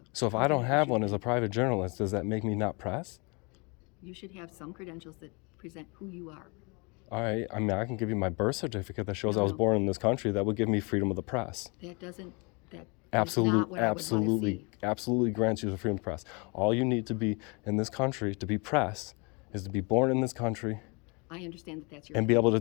So if I don't have one as a issue. private journalist, does that make me not press? You should have some credentials that present who you are. All right. I mean, I can give you my birth certificate that shows I was No. born in this country. That would give me freedom of the press. That doesn't, that is Absolutely, not what I would want to absolutely, see. absolutely grants you the freedom of press. All you need to be in this country to be press is to be born in this country I understand that that's your. and be able to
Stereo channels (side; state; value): right; quieter; 30.9 dB